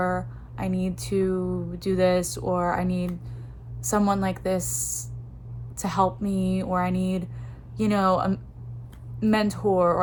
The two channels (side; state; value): both; identical; correlation 1.00